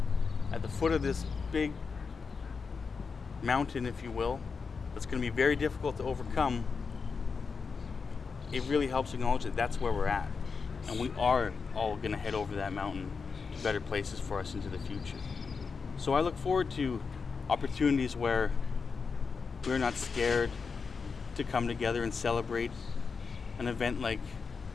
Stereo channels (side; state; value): right; quieter; 5.2 dB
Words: at the foot of this big mountain, if you will, that's going to be very difficult to overcome, it really helps acknowledge that that's where we're at. And we are all going to head over that mountain to better places for us into the future. So I look forward to opportunities where we're not scared to come together and celebrate an event like